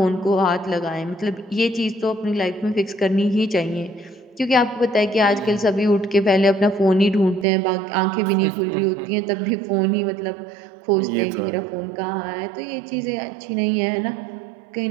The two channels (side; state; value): left; drops out; at 7.5 s